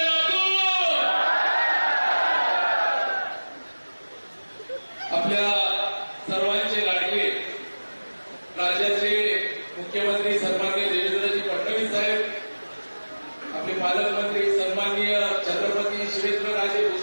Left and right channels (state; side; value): inverted; both; correlation -1.00